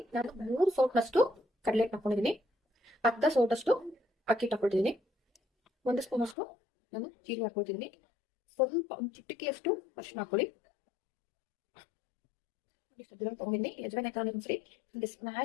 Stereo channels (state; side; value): drops out; right; at 6.4 s